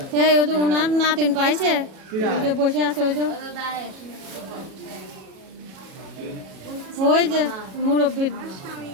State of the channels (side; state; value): left; late; 37 ms